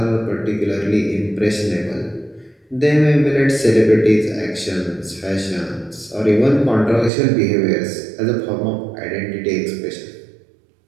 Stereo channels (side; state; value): left; drops out; at 7.1 s